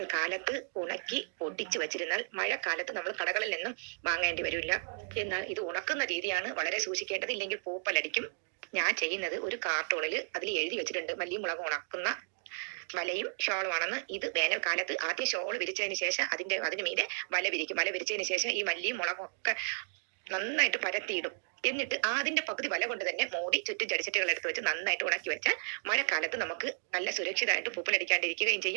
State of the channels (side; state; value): left; silent; digital silence